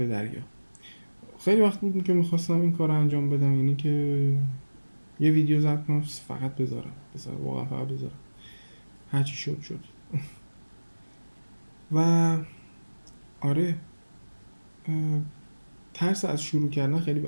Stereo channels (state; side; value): inverted; both; correlation -1.00